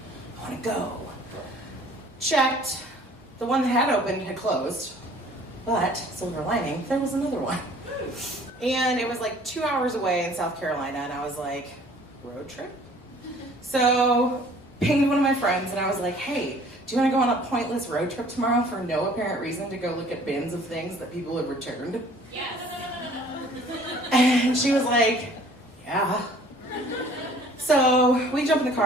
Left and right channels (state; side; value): normal; both; correlation 0.53